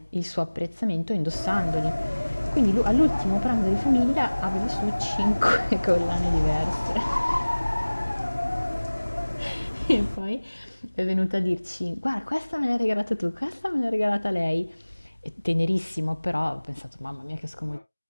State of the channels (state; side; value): inverted; both; correlation -1.00